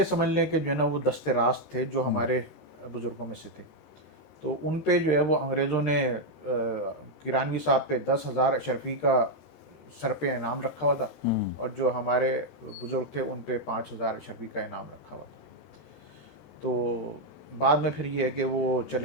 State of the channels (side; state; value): right; late; 13 ms